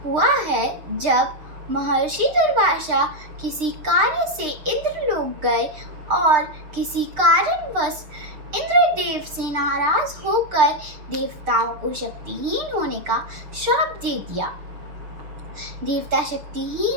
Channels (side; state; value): left; late; 6.6 ms